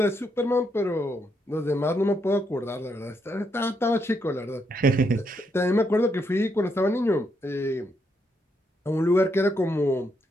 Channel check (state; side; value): normal; both; correlation 0.78